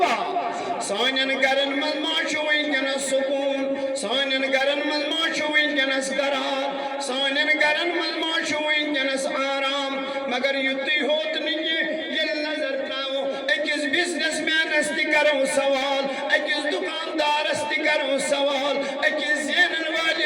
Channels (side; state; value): both; identical; correlation 1.00